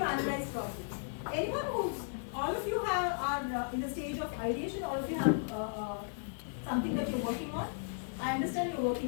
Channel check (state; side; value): silent; right; 54 dB below the other